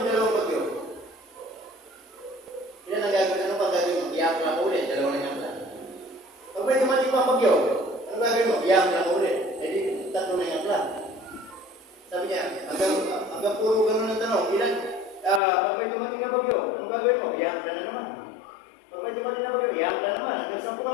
dalawang bagyo, ilan ang gagawin? Ano pag gagawin mo? Iyak lang ulit, dalawa na yang plan. Pag may dumating pang bagyo, ano gagawin mo? Iyak lang ulit. Eh di, tatlo na yang plan. Sabi niya, hanggang puro ganun ang tanong, ilan? Pag may dumating na bagyo, ano gagawin mo? Iyak na naman. Pag may dumating na bagyo, iyak na naman. Hanggang 10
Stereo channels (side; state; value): right; drops out; at 15.4 s